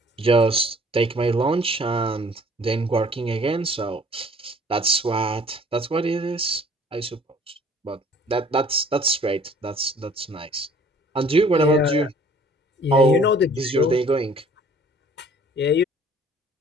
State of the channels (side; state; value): both; normal; correlation 0.54